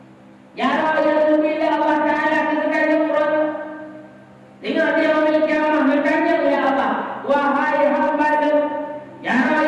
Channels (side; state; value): both; identical; correlation 1.00